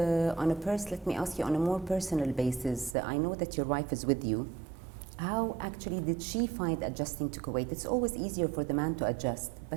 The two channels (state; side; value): drops out; left; at 3.0 s